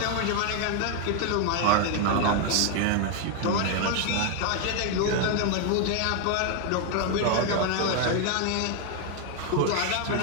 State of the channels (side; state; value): both; different; correlation 0.01